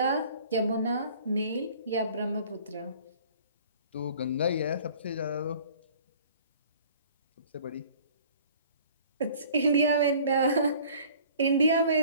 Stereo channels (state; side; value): inverted; both; correlation -0.51